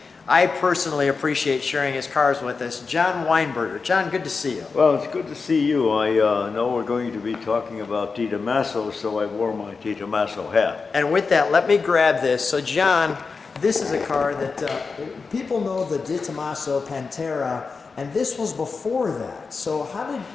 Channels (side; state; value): right; quieter; 4.7 dB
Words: I personally appreciate sharing his cars with us, John Weinberger. John, good to see you. Well, it's good to see you. I know we're going to be talking about DeTomaso, so I wore my DeTomaso hat. And with that, let me grab this. So, John, this is a car that people know the DeTomaso Pantera, and this was before that. So how